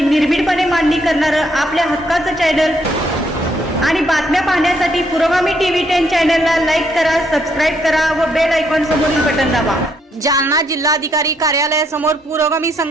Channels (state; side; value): normal; both; correlation 0.72